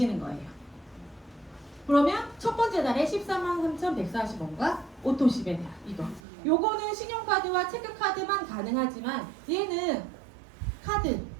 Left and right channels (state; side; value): drops out; left; at 6.2 s